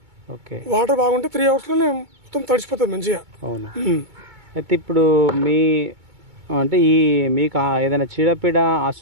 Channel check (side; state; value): left; late; 2.2 ms